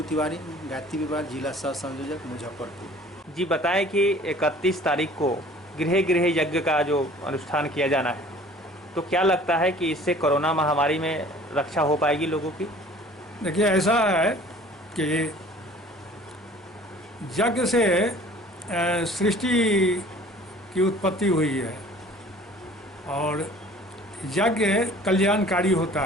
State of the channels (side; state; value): both; normal; correlation 0.49